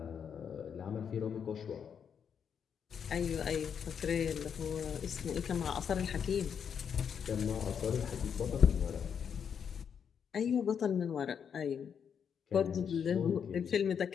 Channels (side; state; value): right; quieter; 7.5 dB